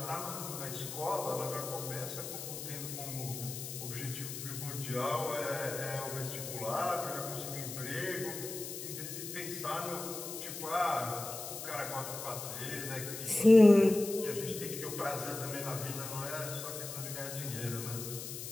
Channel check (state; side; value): noise; left; hiss, 8 dB below the sound